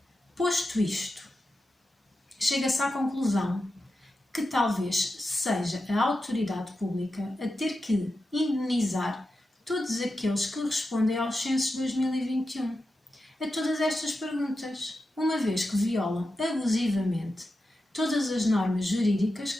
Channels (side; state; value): both; normal; correlation 0.90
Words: Posto isto, chega-se à conclusão que talvez seja a autoridade pública a ter que indenizar todos aqueles que respondem aos censos 2021 a todas estas perguntas, uma vez que violam abusivamente todas as normas jurídicas